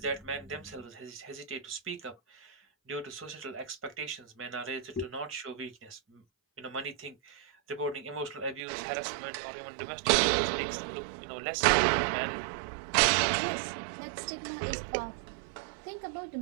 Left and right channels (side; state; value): left; drops out; at 8.6 s